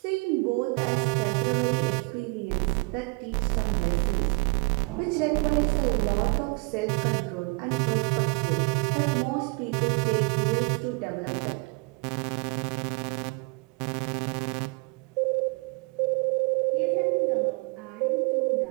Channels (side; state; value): left; quieter; 30.5 dB